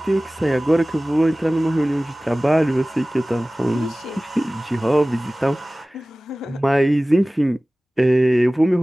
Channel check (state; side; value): normal; both; correlation 0.98